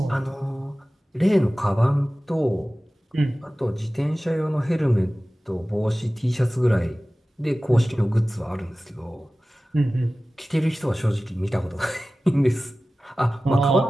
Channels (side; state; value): both; normal; correlation 0.96